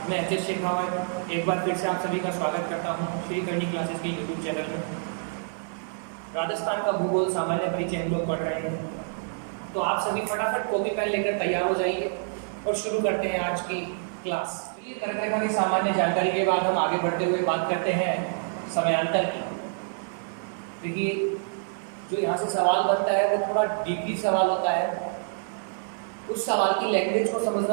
मैं एच एस शेखावत एक बार फिर से आप सभी का स्वागत करता हूँ श्री करनी क्लासेस के यूट्यूब चैनल में। राजस्थान का भूगोल सामान्य परिचय हम लोग पढ़ रहे हैं, तो आप सभी फटाफट कॉपी पेन लेकर तैयार हो जाइए और शुरू करते हैं आज की क्लास। ये कर्क रेखा की सामान्य जानकारी के बाद हम आगे बढ़ते हुए बात करते हैं समयांतर की। देखिए, जो यहाँ से सवाल बनता है वो थोड़ा डीपली सवाल होता है। उस सवाल की लैंग्वेज को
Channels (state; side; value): silent; left; 60 dB below the other